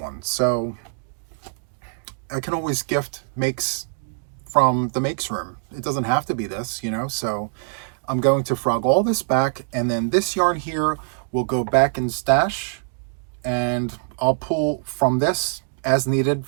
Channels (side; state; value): left; silent; digital silence